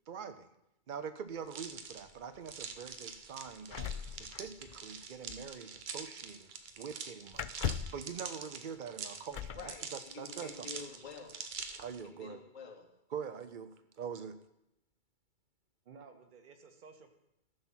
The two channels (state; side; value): late; left; 2.3 ms